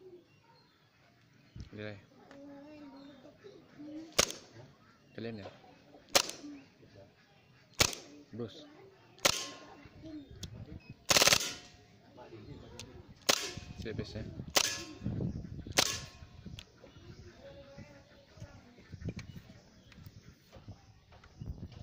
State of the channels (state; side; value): identical; both; correlation 1.00